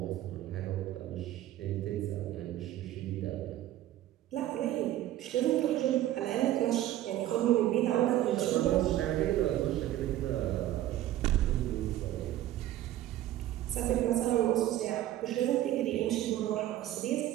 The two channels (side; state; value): left; quieter; 13.6 dB